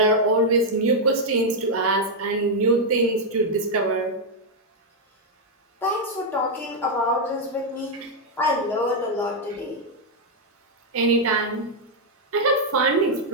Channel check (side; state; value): both; normal; correlation -0.01